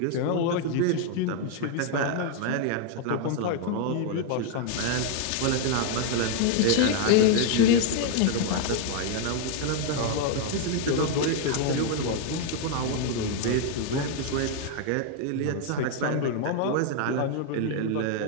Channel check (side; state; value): both; different; correlation 0.00